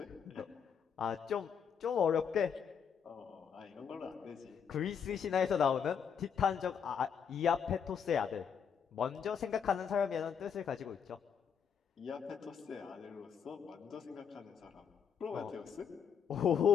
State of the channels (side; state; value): right; quieter; 7.3 dB